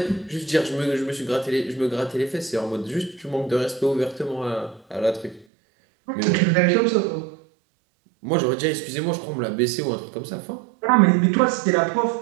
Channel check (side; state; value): left; drops out; at 5.5 s